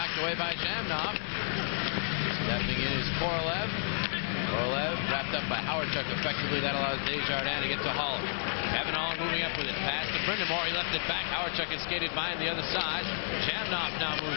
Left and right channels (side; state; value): right; silent; 56 dB below the other